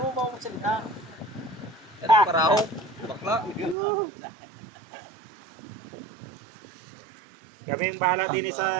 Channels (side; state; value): left; drops out; at 3.8 s